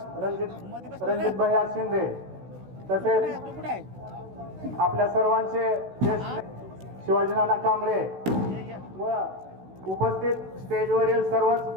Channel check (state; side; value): late; left; 16 ms